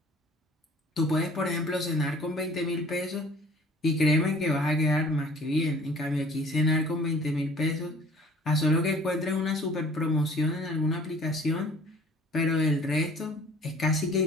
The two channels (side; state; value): both; normal; correlation 0.51